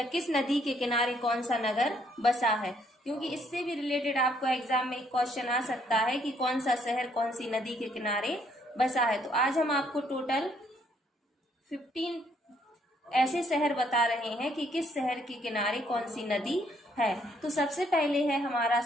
किस नदी के किनारे कौन सा नगर बसा है, क्योंकि इससे भी रिलेटेड आपको एग्जाम में एक क्वेश्चन आ सकता है कि कौन सा शहर कौन सी नदी के किनारे बसा है। तो आज हम आपको टोटल 15 ऐसे शहर बता रहे हैं कि किस शहर के किनारे कौन सी नदी है। तो सबसे पहले है हमारा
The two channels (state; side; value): normal; both; correlation 0.68